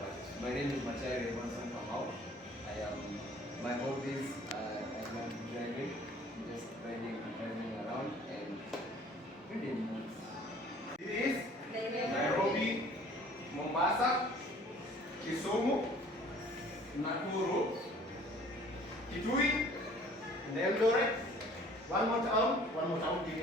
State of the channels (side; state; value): both; normal; correlation 0.52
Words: My name is Machari Evanson Kamau. My hobbies I love driving, just driving around and reading books. It is Nairobi, Mombasa, Kisumu, Nakuru, Kitui, and Eldoret. One more town, give me